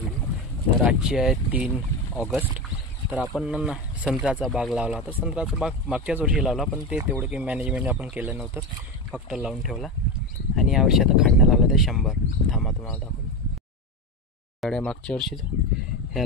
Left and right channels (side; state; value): both; normal; correlation 0.18